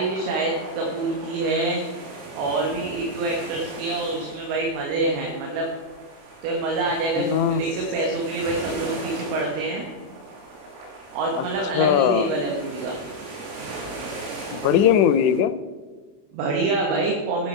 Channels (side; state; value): left; late; 21 ms